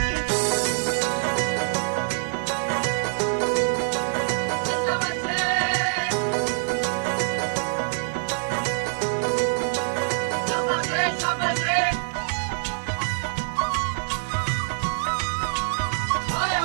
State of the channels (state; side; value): silent; left; digital silence